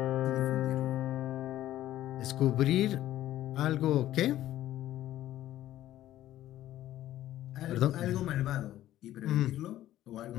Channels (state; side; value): quieter; right; 13.6 dB